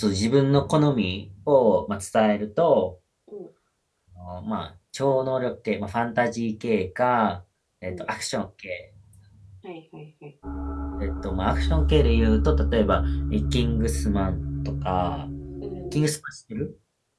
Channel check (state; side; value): identical; both; correlation 1.00